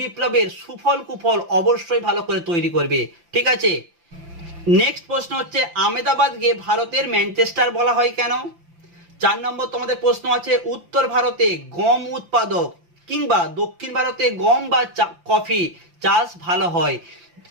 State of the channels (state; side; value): late; left; 5.8 ms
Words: বিপ্লবের সুফল কুফল অবশ্যই ভালো করে তৈরি করবে। ঠিক আছে, নেক্সট প্রশ্ন হচ্ছে আহমেদাবাদকে ভারতের ম্যানচেস্টার বলা হয় কেন? 4 নম্বর তোমাদের প্রশ্ন আছে উত্তর ভারতে গম উৎপাদক কিংবা দক্ষিণ ভারতে গম বা কফি চাষ ভালো হয়।